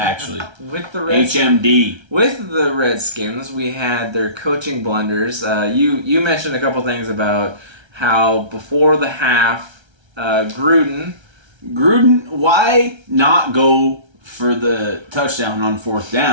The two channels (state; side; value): late; left; 1.3 ms